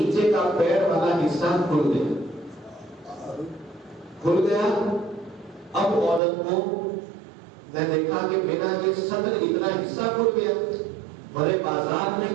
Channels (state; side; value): drops out; left; at 6.2 s